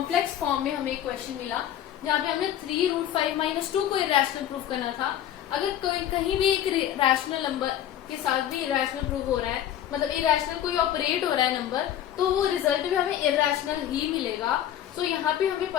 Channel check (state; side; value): quieter; right; 11.1 dB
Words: फॉर्म में हमें क्वेश्चन मिला जहाँ पे हमने 3 रूट 5 माइनस 2 को irrational प्रूव करना था. अगर कोई कहीं भी एक रैशनल नंबर के साथ भी इरैशनल प्रूव हो रहा है, मतलब इरैशनल कोई ऑपरेट हो रहा है नंबर, तो वो रिजल्ट भी हमें इरैशनल ही मिलेगा. सो यहाँ पे हमें